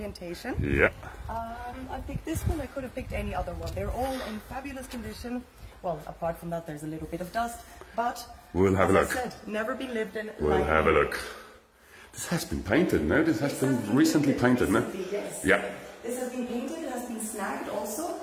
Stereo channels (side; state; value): both; identical; correlation 1.00